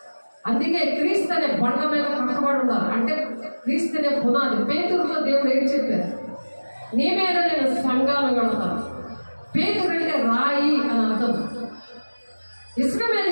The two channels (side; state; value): both; inverted; correlation -1.00